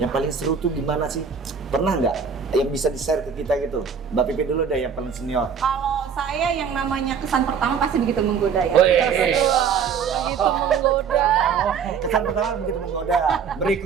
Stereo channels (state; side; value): quieter; left; 6.6 dB